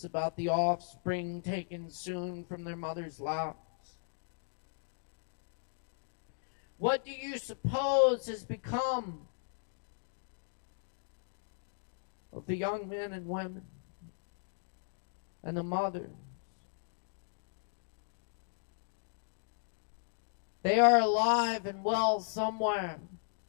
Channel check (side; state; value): right; silent; digital silence